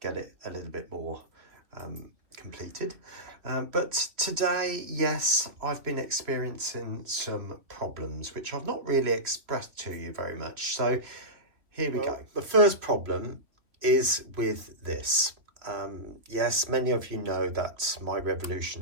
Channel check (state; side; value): late; left; 3.2 ms